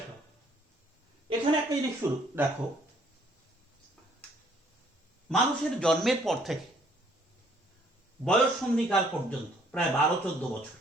এখানে একটা জিনিস শুরু দেখো, মানুষের জন্মের পর থেকে বয়ঃসন্ধিকাল পর্যন্ত প্রায় 12-14 বছর,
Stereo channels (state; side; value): normal; both; correlation 0.63